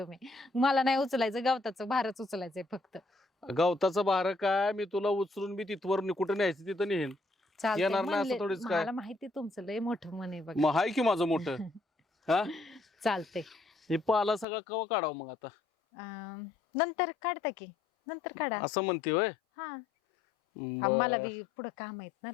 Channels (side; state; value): right; drops out; at 14.5 s